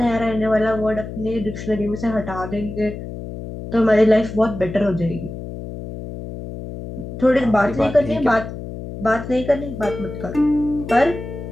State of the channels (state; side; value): noise; left; hum, 9 dB below the sound